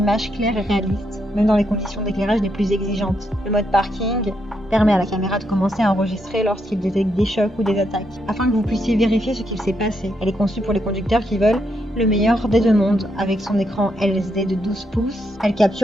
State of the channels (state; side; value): normal; both; correlation 0.79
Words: claires et réalistes, même dans les conditions d'éclairage les plus exigeantes. Le mode parking permet à la caméra de commencer à enregistrer lorsqu'il détecte des chocs ou des attaques, afin que vous puissiez vérifier ce qu'il s'est passé. Elle est conçue pour les conducteurs qui veulent le meilleur des deux mondes. Avec son écran LCD de 12 pouces, elle